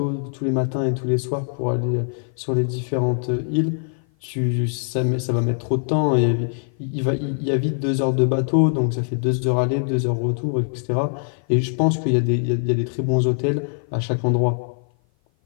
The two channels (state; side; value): silent; right; 56 dB below the other